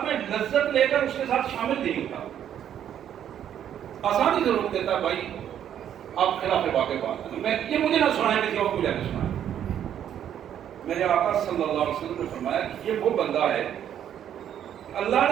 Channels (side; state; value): left; quieter; 9.9 dB